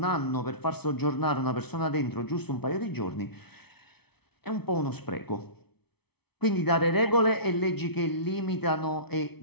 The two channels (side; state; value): right; late; 0.98 ms